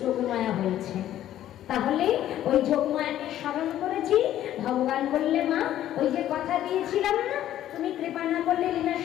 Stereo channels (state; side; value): quieter; right; 12.3 dB